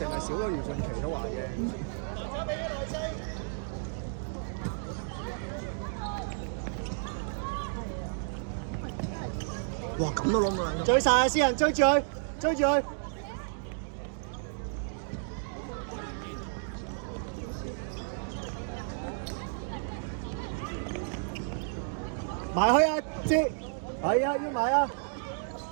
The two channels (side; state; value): left; silent; digital silence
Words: 係少咗余俊琪都話嘅。哇！咁都攞唔到兩個。追晒啊！私人追住佢，追住佢。埋去啊！接，係啊，要埋啊！